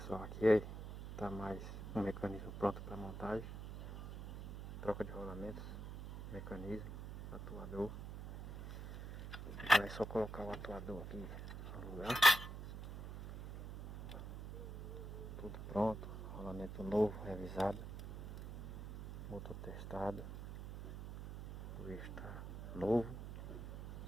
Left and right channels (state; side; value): noise; right; hum, 9 dB below the sound